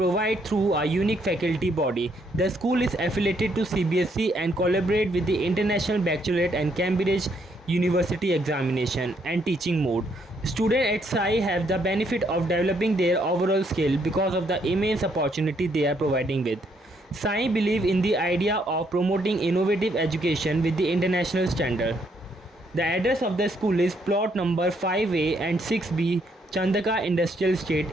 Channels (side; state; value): both; normal; correlation 0.72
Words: through a unique faculty body. The school is affiliated to CBSE and collaborate with the International Baccalaureate and Cambridge University examination and teaching mode. Students at Sai have the benefit of developing their overall skill because of the immense opportunity they are providing with. Sai believe in the idea of promoting innovative education with the international standard. The address of the school is plot number 5A and 6B, Chandaka Industrial